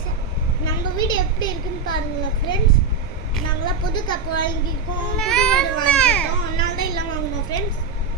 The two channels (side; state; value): left; quieter; 4.6 dB